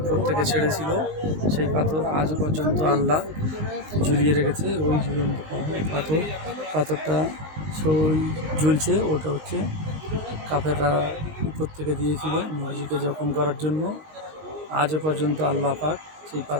থেকে ছেড়েছিল, সেই পাথর আজও পর্যন্ত আল্লাহ ঝুলিয়ে রেখেছে। ওই ঝুলন্ত পাথরটা ঝুলছে, ওটা হচ্ছে কাফেররা উপর থেকে দিয়েছিল নবীজিকে জখম করার জন্য। আজও পর্যন্ত আল্লাহ পাক সেই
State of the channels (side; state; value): left; late; 19 ms